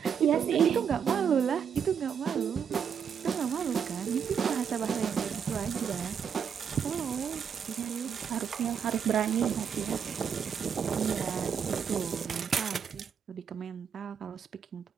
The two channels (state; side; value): quieter; left; 7.4 dB